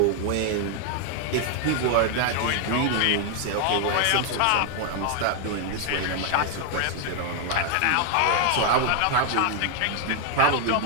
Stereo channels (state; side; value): different; both; correlation 0.00